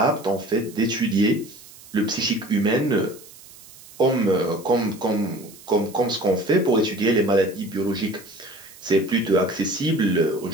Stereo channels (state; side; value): noise; right; hiss, 21 dB below the sound